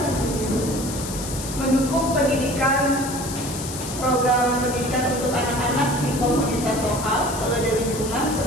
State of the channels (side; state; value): left; noise; hiss, 9 dB below the sound